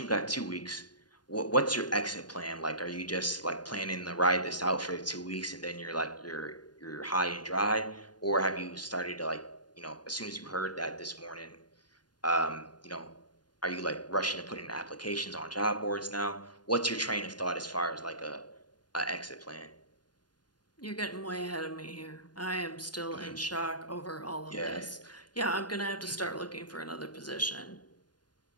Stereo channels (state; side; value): late; right; 0.70 ms